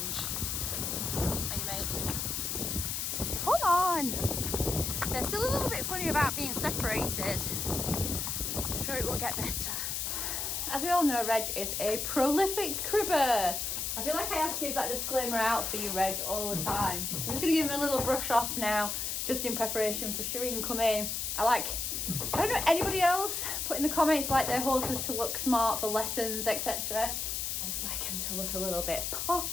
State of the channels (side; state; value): left; noise; hiss, 2 dB below the sound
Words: Are you, mate? Come on! They're still a little bit funny about being separated. I'm sure it will get better. As we all know, Reg is a prolific cribber. I feel like I have to give that disclaimer out for you, Reg, all the time. So I'm just going to give him a little brush off now, just in preparation for Shireen coming. I don't know anybody else put in the comments like their horses to look smart for lessons, etc. I just like him to look a little bit